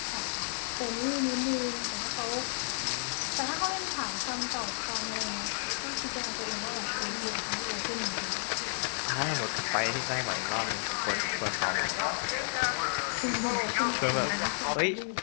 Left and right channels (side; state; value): right; silent; digital silence